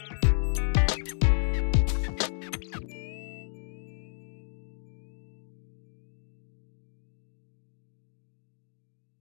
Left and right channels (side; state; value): right; silent; digital silence